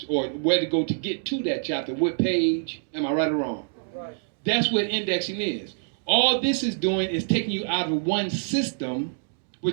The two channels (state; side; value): silent; left; digital silence